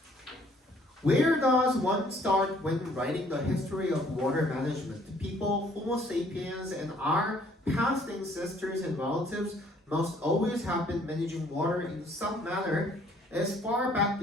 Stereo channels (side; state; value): both; normal; correlation 0.61